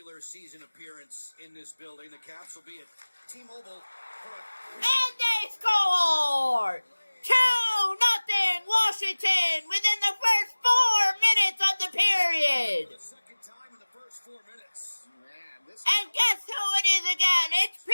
season appearance in this building. The Caps will be at T-Mobile. And they score! 2-0 Washington within the first 4 minutes of the period. The second time in the first 4 minutes. And guess who it is again? It's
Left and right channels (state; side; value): inverted; both; correlation -1.00